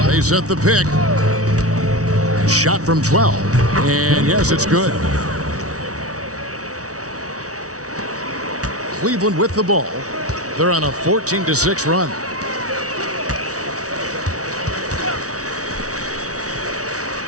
They set the pick. Shot from 12. And yes, it's good. Cleveland with the ball. They're on a 14-6 run.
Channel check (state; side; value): late; left; 0.66 ms